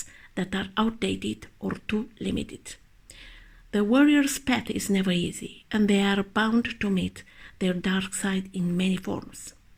that are outdated or too limited. The warrior's path is never easy, and they are bound to meet their dark side in many forms.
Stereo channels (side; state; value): both; identical; correlation 1.00